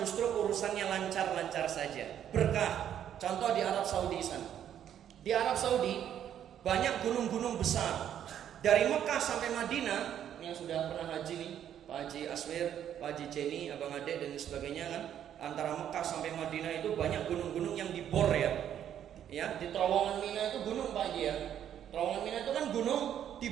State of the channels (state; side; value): quieter; left; 10.0 dB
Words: urusannya lancar-lancar saja, berkah. Contoh di Arab Saudi sana. Di Arab Saudi banyak gunung-gunung besar. Dari Mekah sampai Madinah, yang sudah pernah haji nih, Pak Haji Aswir, Pak Haji Jenny, Abang Ade dan sebagainya kan, antara Mekah sampai Madinah itu banyak gunung-gunung yang dibor, ya. Ya, di Terowongan Mina itu gunung Pak Haji, ya. Terowongan Mina itu kan gunung